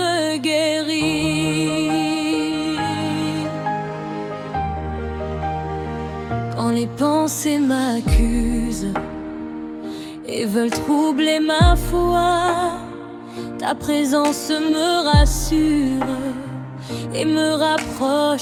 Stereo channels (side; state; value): both; identical; correlation 1.00